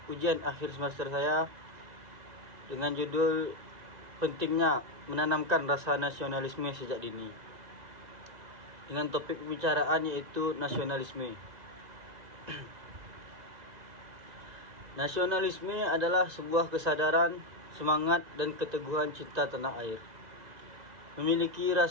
ujian akhir semester saya dengan judul pentingnya menanamkan rasa nasionalisme sejak dini, dengan topik pembicaraan yaitu nasionalisme. Nasionalisme adalah sebuah kesadaran, semangat, dan keteguhan cinta tanah air. Memiliki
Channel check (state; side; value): late; left; 2.0 ms